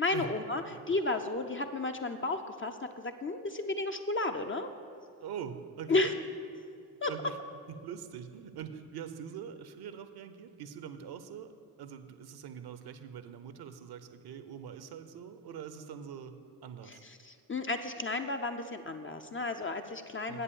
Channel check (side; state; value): both; normal; correlation 0.11